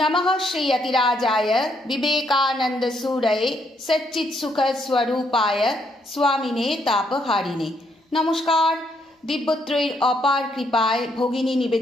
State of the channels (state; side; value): normal; both; correlation 0.73